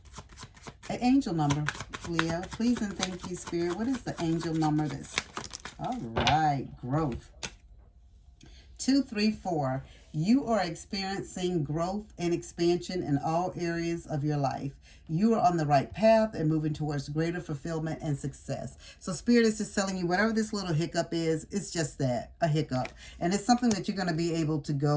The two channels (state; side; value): identical; both; correlation 1.00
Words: an angel number, Leo. Please and thank you, Spirit. What is the angel number all right, growth. 234. You are experiencing growth and expansion in all areas of your life. You are on the right path and moving towards greater fulfillment and success. So Spirit is just telling you whatever this little hiccup is, it's just that, a hiccup. And it's something that you're going to be able to